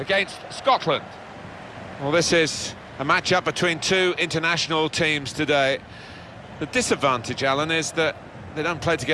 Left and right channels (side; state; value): both; identical; correlation 1.00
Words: Scotland. Well, this is a match-up between two international teams today. The disadvantage, Alan, is that they don't play